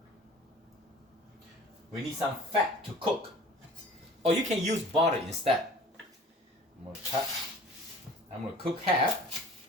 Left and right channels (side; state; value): both; normal; correlation 0.45